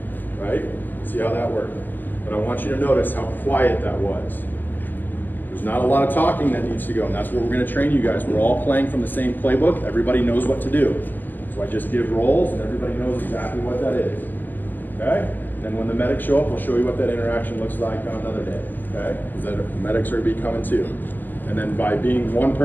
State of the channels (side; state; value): right; late; 0.087 ms